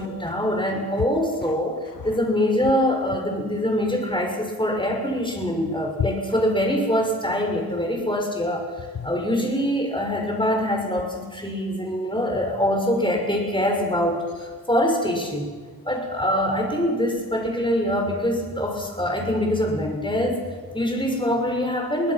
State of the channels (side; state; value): both; normal; correlation 0.48